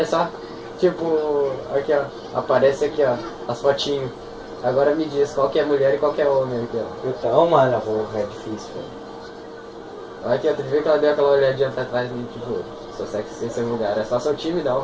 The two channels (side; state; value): both; identical; correlation 1.00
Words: só. Tipo, aqui ó, aparece aqui ó, as fotinhos. Agora me diz qual que é mulher e qual que é homem aqui ó. Então, mano, porra, é difícil, velho. Olha aqui ó, tu viu que ela deu aquela olhadinha pra trás e tipo, Sou sexy sem ser vulgar. É só seu time, não.